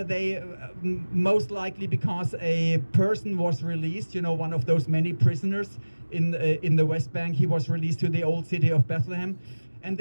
most likely because a person was released, you know, one of those many prisoners in the West Bank, he was released to the old city of Bethlehem. And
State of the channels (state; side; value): inverted; both; correlation -1.00